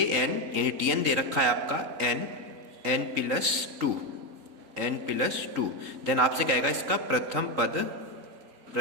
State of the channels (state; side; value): late; left; 3.9 ms